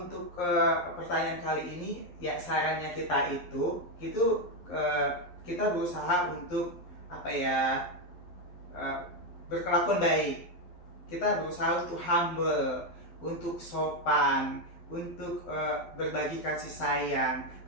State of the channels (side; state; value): right; late; 12 ms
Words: pertanyaan kali ini ya, sarannya kita itu kita berusaha untuk berkelakuan baik. Kita berusaha untuk humble, untuk sopan, untuk berbagi kasih sayang,